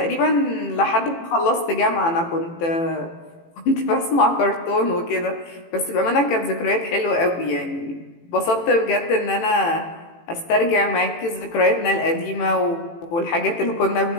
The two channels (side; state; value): right; late; 18 ms